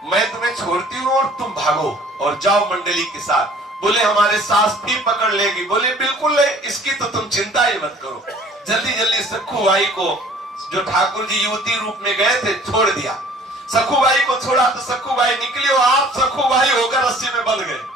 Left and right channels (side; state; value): both; normal; correlation 0.52